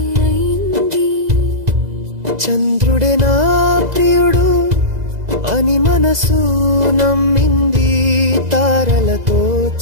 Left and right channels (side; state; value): left; late; 2.0 ms